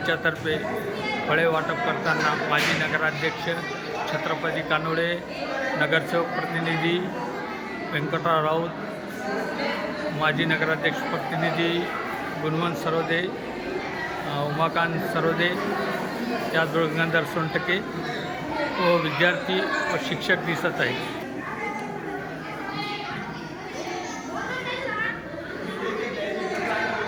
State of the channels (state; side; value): identical; both; correlation 1.00